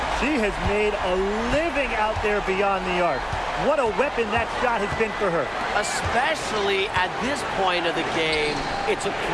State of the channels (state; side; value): identical; both; correlation 1.00